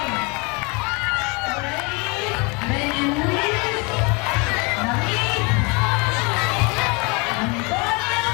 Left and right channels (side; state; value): right; quieter; 29.9 dB